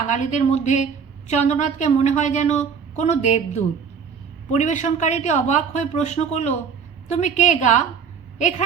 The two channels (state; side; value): quieter; left; 6.5 dB